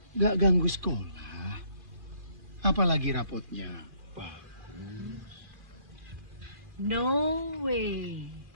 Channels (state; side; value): late; left; 2.4 ms